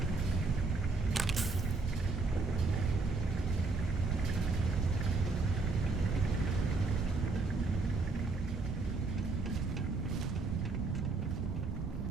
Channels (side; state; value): left; quieter; 3.8 dB